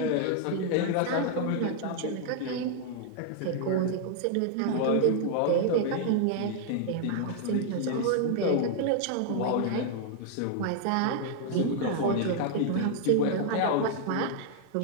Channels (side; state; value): both; different; correlation 0.00